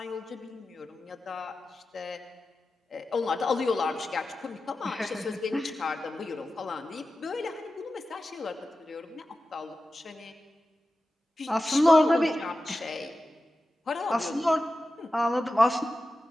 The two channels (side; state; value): both; normal; correlation 0.93